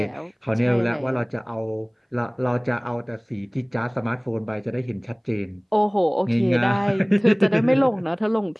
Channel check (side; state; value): both; identical; correlation 1.00